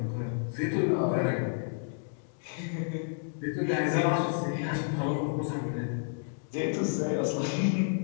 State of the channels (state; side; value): silent; right; digital silence